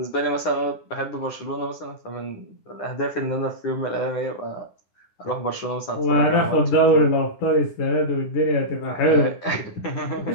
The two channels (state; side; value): late; right; 10 ms